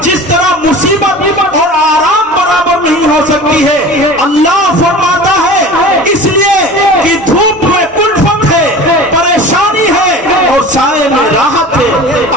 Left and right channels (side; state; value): both; normal; correlation 0.38